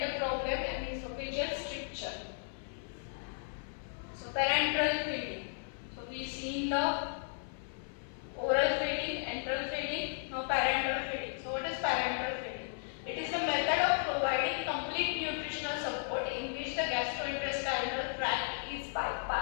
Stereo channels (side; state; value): right; silent; 54 dB below the other